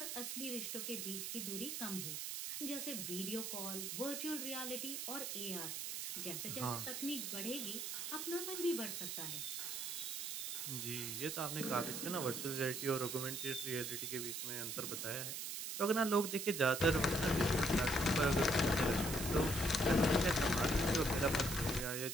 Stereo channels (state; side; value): noise; right; hiss, 4 dB below the sound